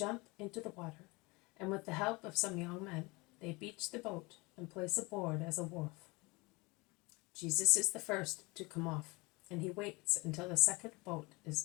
into the water, and with the help of some young men, they beach the boat and place a board as a wharf. Jesus is the first to come off, and he waits until the second boat is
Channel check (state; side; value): quieter; right; 25.2 dB